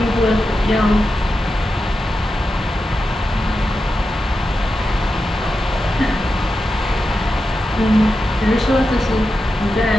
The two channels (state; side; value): normal; both; correlation 0.90